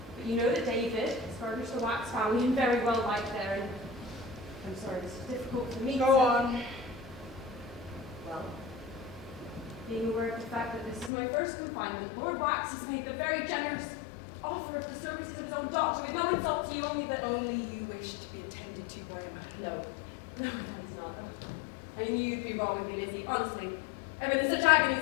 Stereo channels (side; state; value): right; drops out; at 11.1 s